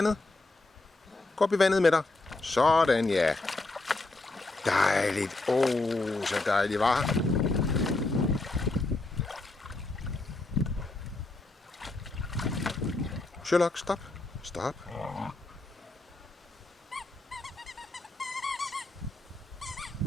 Gå op i vandet med dig. Sådan, ja. Dejligt. Så dejligt, var. Sherlock, stop. Stop.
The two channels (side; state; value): right; quieter; 3.1 dB